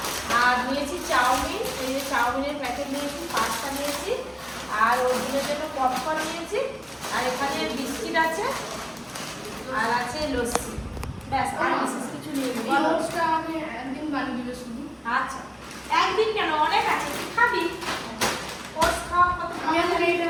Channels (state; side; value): identical; both; correlation 1.00